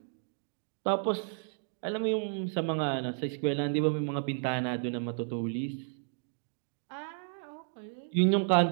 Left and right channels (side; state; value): left; silent; 56 dB below the other